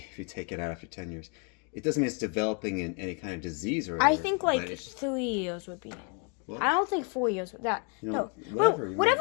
you take it out after 10 years. It doesn't mean it's developing in any kind of disease or whatever. I think but like it's- 3 years would be. Well, I don't think 4 years with that. You know, No, whatever you whatever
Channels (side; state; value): right; quieter; 36.2 dB